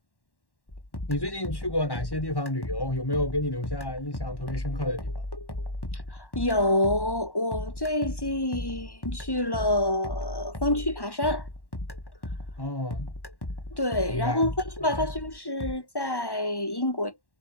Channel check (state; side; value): late; right; 1.1 ms